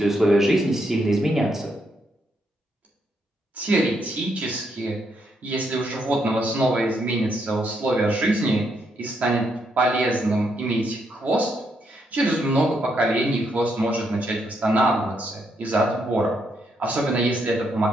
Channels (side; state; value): both; normal; correlation 0.77